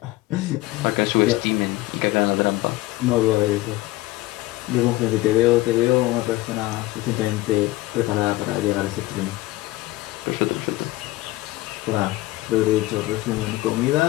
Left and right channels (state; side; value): quieter; right; 18.6 dB